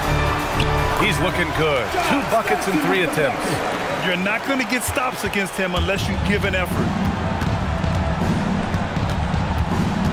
He's looking good. 2 buckets and 3 attempts. You're not going to get stops against him unless you give an effort.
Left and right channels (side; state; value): both; identical; correlation 1.00